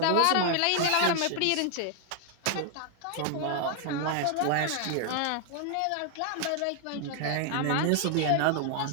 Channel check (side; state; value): both; different; correlation 0.00